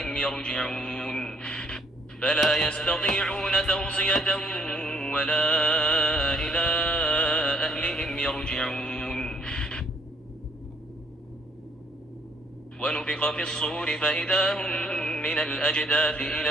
يرجعون فلا يستطيعون توصية ولا إلى أهلهم يرجعون ونفخ في الصور فإذا هم من الأجداث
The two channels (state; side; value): normal; both; correlation 0.66